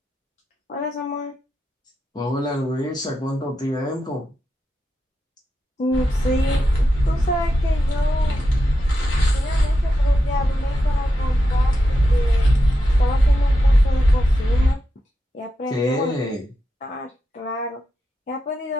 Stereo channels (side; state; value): both; normal; correlation 0.88